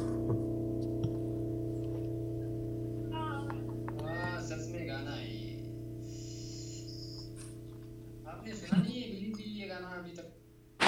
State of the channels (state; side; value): identical; both; correlation 1.00